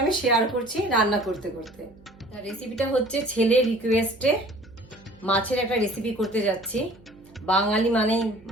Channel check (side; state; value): right; noise; hum, 25 dB below the sound